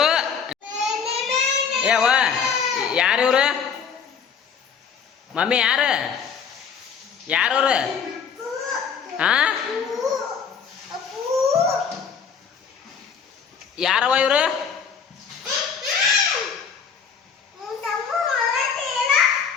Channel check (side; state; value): right; quieter; 6.7 dB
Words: ಏವ ಯಾರು ಇವ್ರು? ಮಮ್ಮಿ ಯಾರು? ಯಾರವ್ರು? ಹಾ, ಯಾರವ ಇವ್ರು?